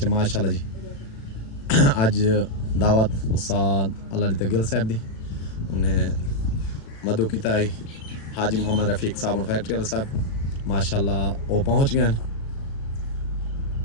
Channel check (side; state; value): right; late; 36 ms